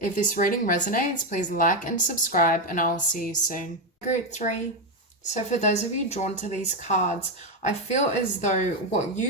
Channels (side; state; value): both; normal; correlation 0.08